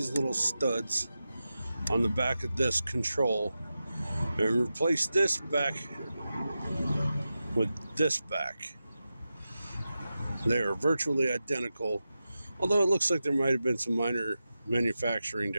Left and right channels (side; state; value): both; inverted; correlation -0.92